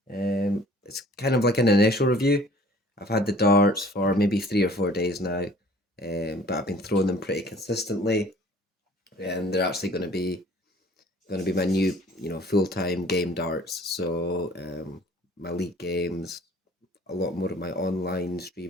It's kind of like an initial review. I've had the darts for maybe 3 or 4 days now, but I've been throwing them pretty consistently, and they're actually going to be my new, full-time game darts. So, my league games, a lot more of my online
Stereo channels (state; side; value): normal; both; correlation 0.52